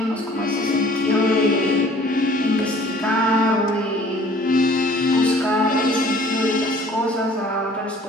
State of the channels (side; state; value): both; normal; correlation 0.53